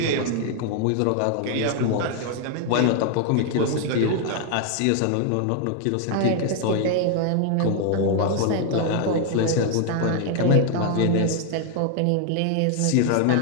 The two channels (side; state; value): both; different; correlation 0.00